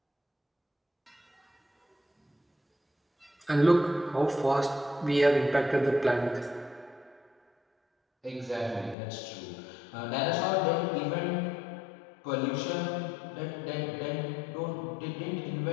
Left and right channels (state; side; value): drops out; right; at 9.0 s